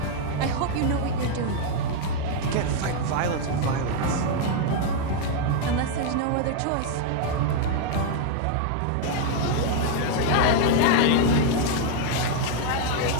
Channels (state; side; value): different; both; correlation 0.00